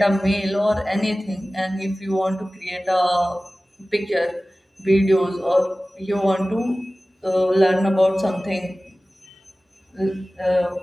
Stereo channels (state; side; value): normal; both; correlation 0.97